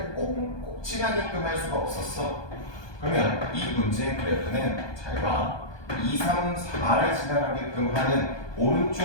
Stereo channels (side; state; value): right; late; 1.2 ms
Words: 꼭 지나게끔 할 수가 없었어. 그러면 이 문제의 그래프는 잘 봐. 2, 3, 4를 지나가게끔 하는